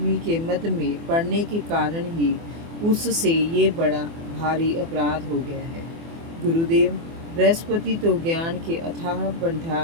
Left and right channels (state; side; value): late; left; 24 ms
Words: के मद में पड़ने के कारण ही उससे ये बड़ा भारी अपराध हो गया है। गुरुदेव, बृहस्पति तो ज्ञान के अथाह